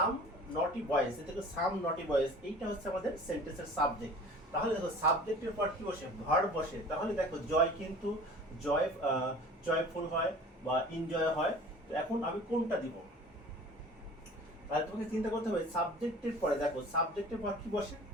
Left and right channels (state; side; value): normal; both; correlation 0.43